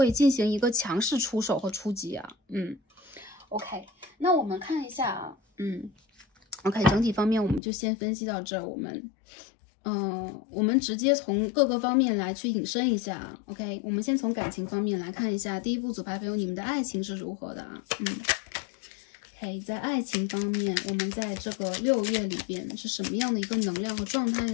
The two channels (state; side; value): drops out; right; at 7.6 s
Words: 进行一个强势出手和出击啊。OK， 那我们看一下啊，OK， 整体方面我们就先分析到这儿，我们直接从各个方面来去引申一下 ，OK， 我们先从感情方面来看一下，第一副组牌朋友，你们的爱情是如何的啊？OK， 在爱情方面，我们在这个6月里边是什么样的一个能量和状态